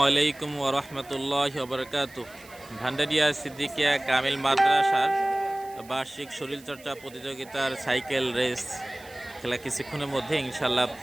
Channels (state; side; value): noise; right; hiss, 22 dB below the sound